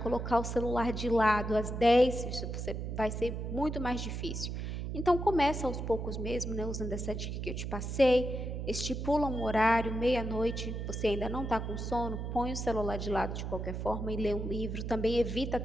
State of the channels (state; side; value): noise; right; hum, 4 dB below the sound